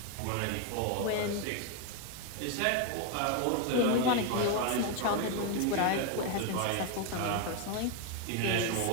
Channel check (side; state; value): both; different; correlation 0.01